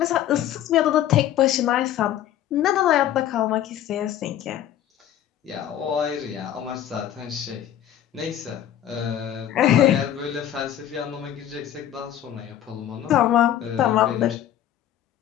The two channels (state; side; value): quieter; right; 11.3 dB